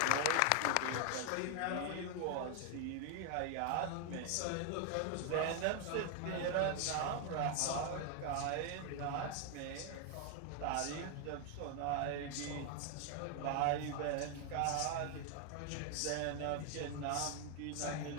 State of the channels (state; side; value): different; both; correlation 0.00